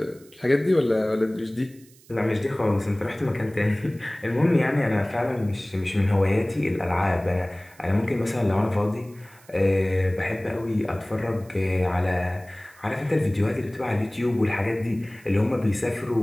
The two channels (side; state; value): right; noise; hiss, 27 dB below the sound